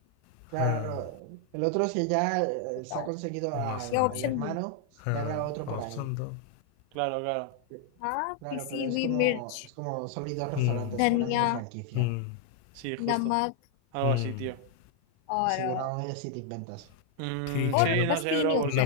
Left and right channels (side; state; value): both; different; correlation 0.00